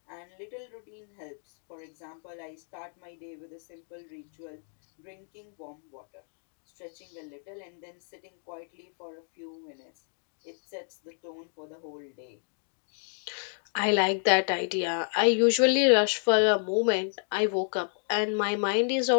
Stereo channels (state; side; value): silent; right; 57 dB below the other